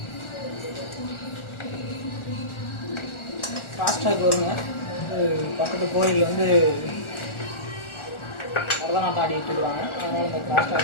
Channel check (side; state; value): right; late; 1.4 ms